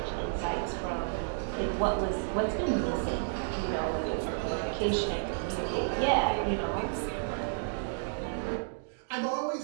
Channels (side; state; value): left; silent; digital silence